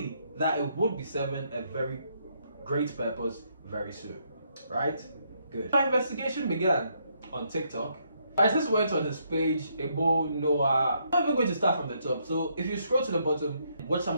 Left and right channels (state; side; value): inverted; both; correlation -0.74